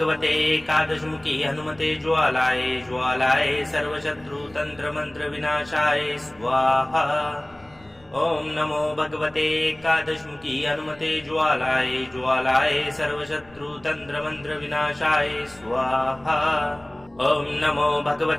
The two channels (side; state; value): left; noise; rumble, 28 dB below the sound